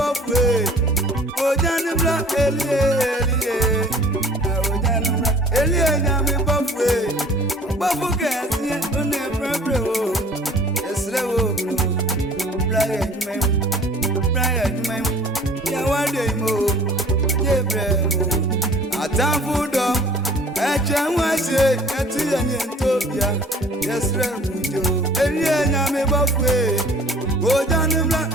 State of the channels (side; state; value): both; normal; correlation 0.51